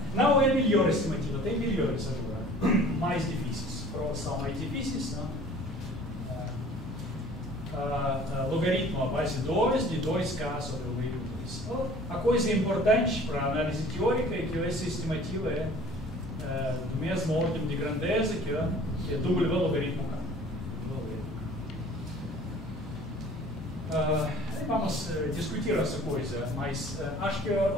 Não é a melhor estimativa, tem melhores agora, mais difíceis. Provas são mais difíceis, não? Logaritmo a base 2 de 2k sobre o logaritmo 2. A coisa importante para a análise teórica é que essa estimativa é do mesmo ordem de grandeza que é W logaritmo k. Vamos discutir essa coisa, mas acho que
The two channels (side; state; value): both; normal; correlation 0.48